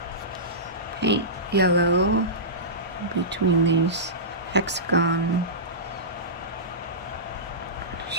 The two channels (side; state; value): both; normal; correlation -0.19